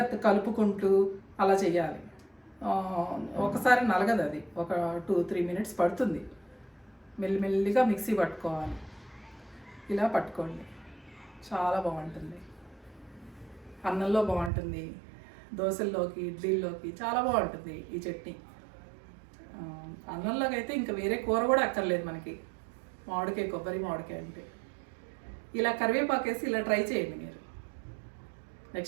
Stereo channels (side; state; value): left; drops out; at 14.5 s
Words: కలుపుకుంటూ అలా చేయాలి. ఒకసారి నలగదు, అది ఒక 2-3 మినిట్స్ పడుతుంది. మెల్లిమెల్లిగా మిక్సీ పట్టుకోవాలి. ఇలా పట్టుకోండి, చాలా బాగుంటుంది. అన్నంలో బాగుంటుంది, దోశల్లోకి, ఇడ్లీల్లోకి చాలా బాగుంటుంది ఈ చట్నీ. అన్నంలోకి అయితే ఇంకా వేరే కూర కూడా అక్కర్లేదు మనకి, మామిడికాయ, కొబ్బరి మామిడికాయ అంటే. ఇలా కరివేపాకు వేసి ఇలా ట్రై చేయండి మీరు.